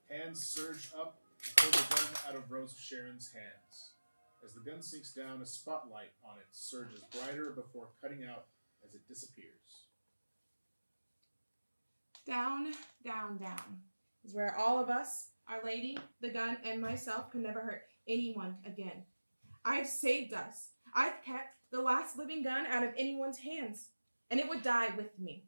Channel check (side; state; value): both; inverted; correlation -1.00